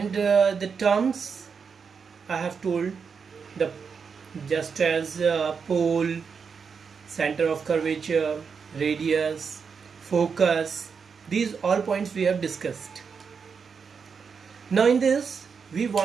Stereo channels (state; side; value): quieter; left; 5.9 dB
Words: the terms I have told, the just as pole, center of curvature, radius, focus, these all points we have discussed. Now in this we